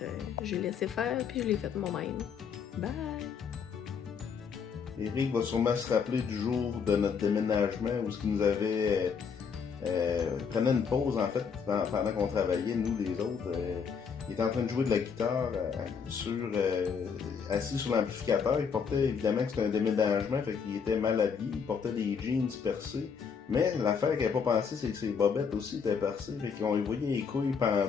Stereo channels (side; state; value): right; quieter; 6.3 dB